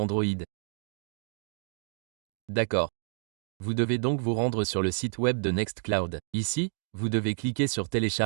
D'accord. Vous devez donc vous rendre sur le site web de Nextcloud. Ici, vous devez cliquer sur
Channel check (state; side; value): silent; left; digital silence